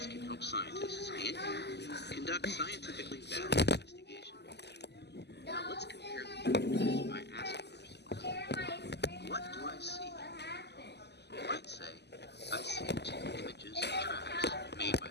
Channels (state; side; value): late; right; 0.50 ms